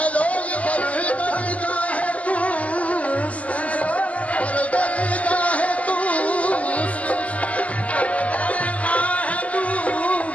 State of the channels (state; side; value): late; right; 0.066 ms